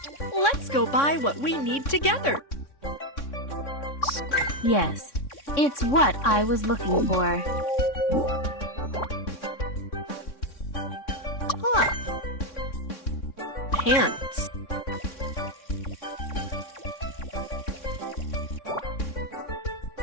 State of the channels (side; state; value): right; late; 3.6 ms